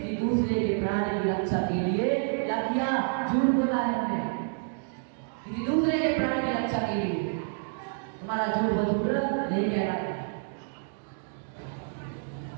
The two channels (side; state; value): left; silent; digital silence